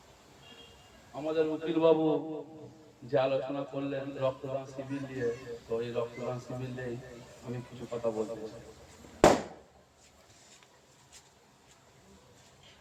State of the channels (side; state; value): both; identical; correlation 1.00